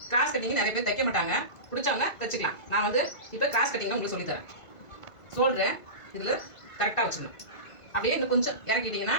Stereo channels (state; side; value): late; right; 1.5 ms